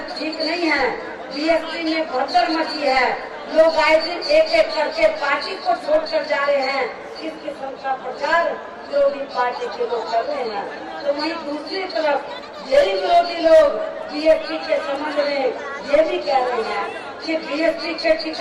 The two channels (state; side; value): identical; both; correlation 1.00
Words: ठीक नहीं है, बीएसपी में भगदड़ मची है, लोग आए दिन एक एक करके पार्टी को छोड़कर जा रहे हैं। इस किस्म का प्रचार विरोधी पार्टी के लोग कर रहे हैं। तो वहीं दूसरी तरफ यही विरोधी लोग बीएसपी के संबंध में ये भी कह रहे हैं कि बीएसपी के